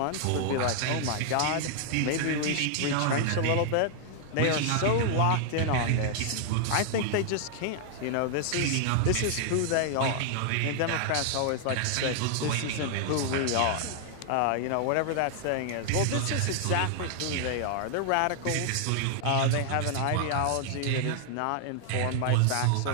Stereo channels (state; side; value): different; both; correlation 0.00